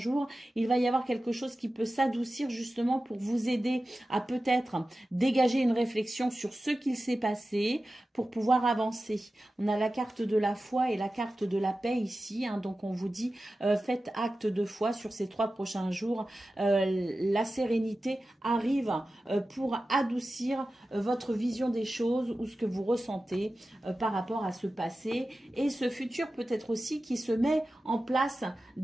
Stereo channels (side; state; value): both; normal; correlation 0.94